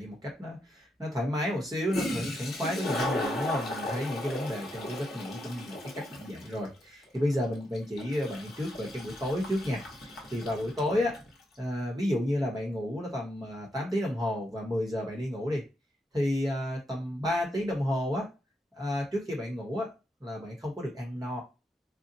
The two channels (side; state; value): both; normal; correlation 0.82